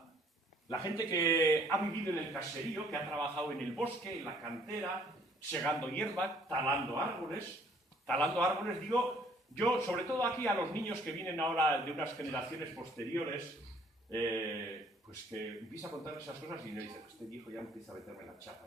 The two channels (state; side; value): normal; both; correlation 0.60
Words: La gente que ha vivido en el caserío, que ha trabajado en el bosque, en la cantera, segando hierba, talando árboles, digo, yo, sobre todo aquí a los niños que vienen ahora de unas generaciones posteriores, pues que empieza a contar esas cosas y me dicen, este viejo ya empieza a meterme la